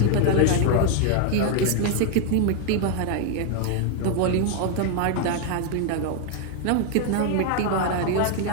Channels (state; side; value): different; both; correlation 0.00